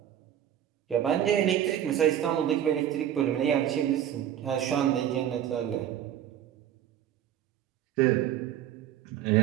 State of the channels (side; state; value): left; quieter; 10.6 dB